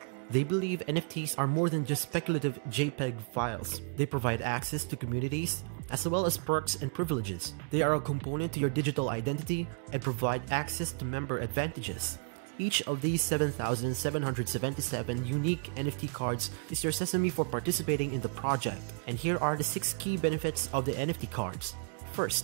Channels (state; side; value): quieter; left; 38.2 dB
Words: They believe NFTs are more than just speculative JPEG files. They provide access to communities, as well as perks and privileges. They are a component to your digital identity and provide access to member advantages. Each of these 7,777 unique NFT cards is your sesame for participating in the project. And here are the 6 key benefits of the NFT cards.